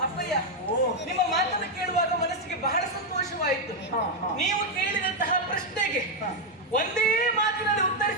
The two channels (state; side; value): normal; both; correlation 0.01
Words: ಅಪ್ಪಯ್ಯ, ನಿಮ್ಮ ಮಾತನ್ನು ಕೇಳುವಾಗ ಮನಸ್ಸಿಗೆ ಬಹಳ ಸಂತೋಷವಾಯಿತು. ನೀವು ಕೇಳಿದಂತಹ ಪ್ರಶ್ನೆಗೆ ಒಂದೇ ಮಾತಿನಲ್ಲಿ